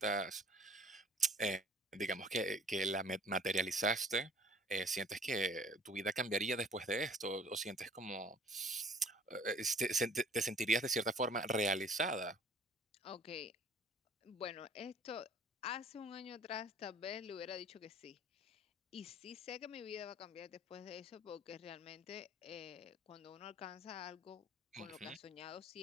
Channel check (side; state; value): both; normal; correlation 0.52